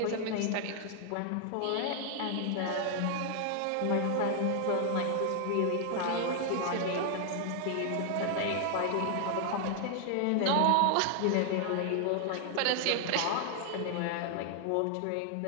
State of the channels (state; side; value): different; both; correlation 0.00